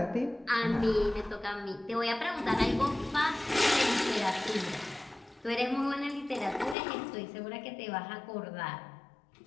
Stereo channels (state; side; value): drops out; right; at 6.8 s